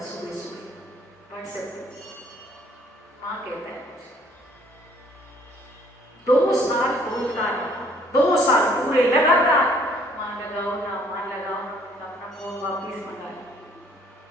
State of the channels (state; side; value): normal; both; correlation 0.60